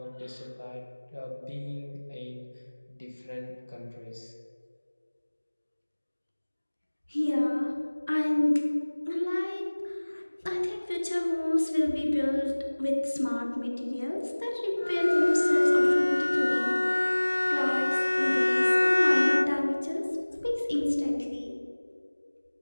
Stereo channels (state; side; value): inverted; both; correlation -1.00